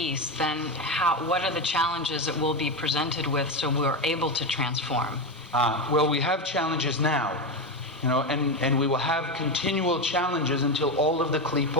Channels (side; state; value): both; normal; correlation 0.14